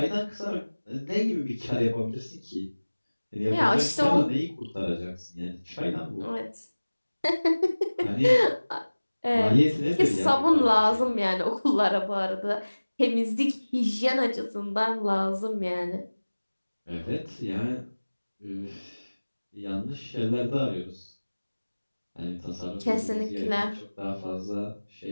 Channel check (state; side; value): inverted; both; correlation -1.00